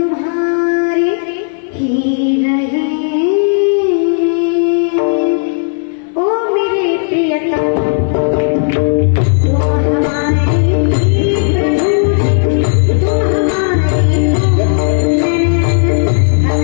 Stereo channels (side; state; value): right; silent; digital silence